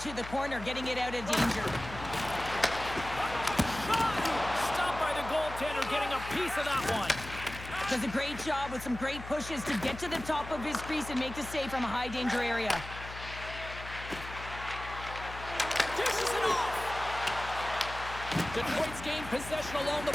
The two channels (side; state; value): left; noise; hum, 12 dB below the sound